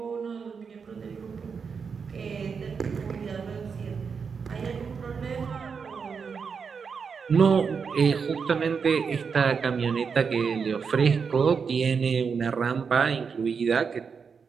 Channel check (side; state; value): left; quieter; 5.9 dB